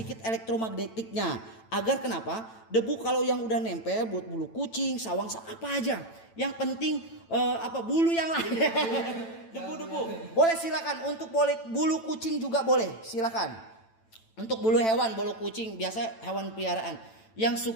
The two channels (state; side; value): late; right; 9.0 ms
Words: elektromagnetiknya. Agar kenapa? Debu kalau yang udah nempel buat bulu kucing, sawang, apa aja. Yang penting bulu yang lain. Debu-debu. Boleh silakan untuk bulu kucing juga boleh, silakan. Untuk bulu hewan, bulu kucing biasa hewan peliharaan. Yang